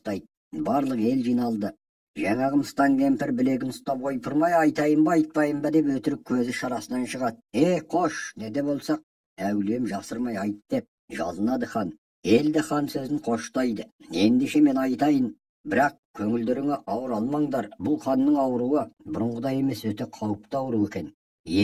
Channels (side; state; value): both; identical; correlation 1.00